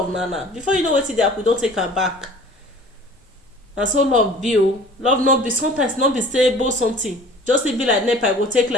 now, before you know wetin dey happen, don take am back. Na so love be o. Love no be, sometimes no be say both something, just e be like nepa, go take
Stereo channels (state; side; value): normal; both; correlation 0.46